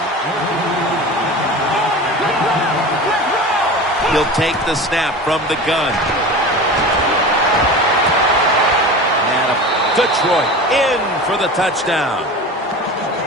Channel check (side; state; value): both; normal; correlation 0.33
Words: He'll take the snap from the gun. Detroit in for the touchdown.